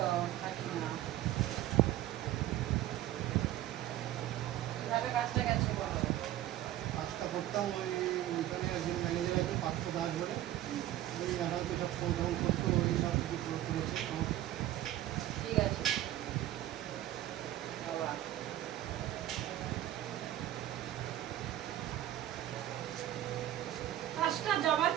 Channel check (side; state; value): left; quieter; 13.4 dB